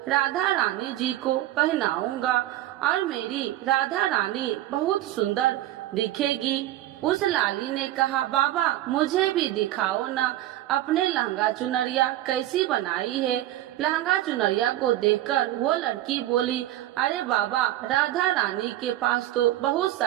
राधा रानी जी को पहनाऊंगा और मेरी राधा रानी बहुत सुंदर दिखेगी। उस लाली ने कहा, बाबा मुझे भी दिखाओ ना अपने लहंगा चुनरिया कैसी बनाई है। लहंगा चुनरिया को देखकर वो लड़की बोली, अरे बाबा राधा रानी के पास तो बहुत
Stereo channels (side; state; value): left; quieter; 14.3 dB